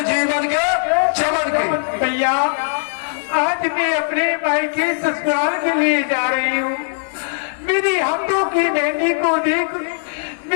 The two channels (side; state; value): right; silent; digital silence